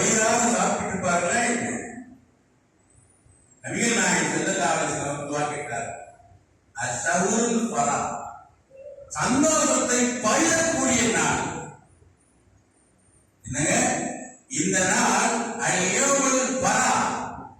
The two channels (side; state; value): both; identical; correlation 1.00